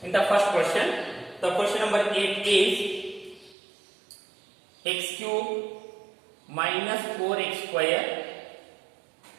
In the first question, the question number 8 is x cube minus 4x square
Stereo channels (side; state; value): left; drops out; at 3.6 s